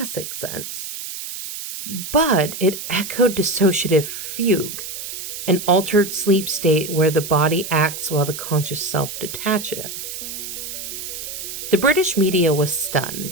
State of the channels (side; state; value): right; noise; hiss, 8 dB below the sound